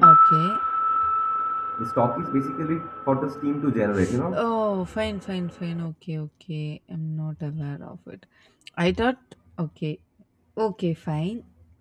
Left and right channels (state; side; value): identical; both; correlation 1.00